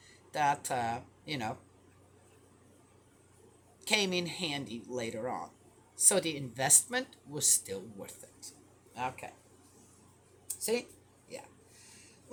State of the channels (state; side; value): identical; both; correlation 1.00